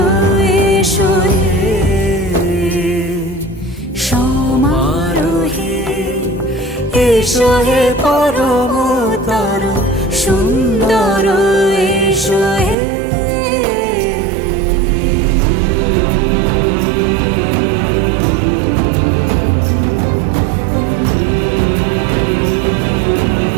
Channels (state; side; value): drops out; left; at 12.8 s